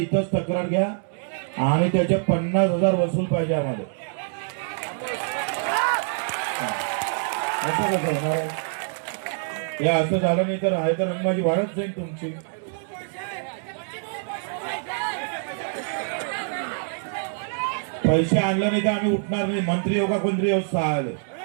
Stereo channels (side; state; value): left; silent; 62 dB below the other